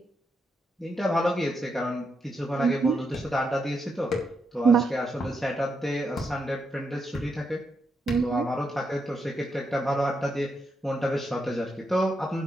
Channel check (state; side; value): normal; both; correlation 0.82